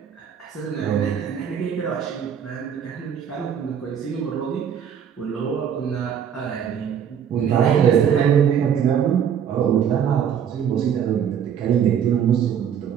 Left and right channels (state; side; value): quieter; left; 8.3 dB